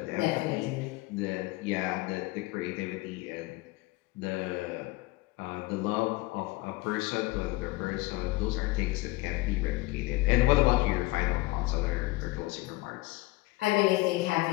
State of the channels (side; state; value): right; quieter; 21.2 dB